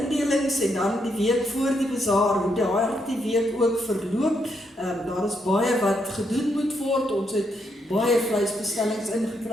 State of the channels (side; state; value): both; normal; correlation 0.78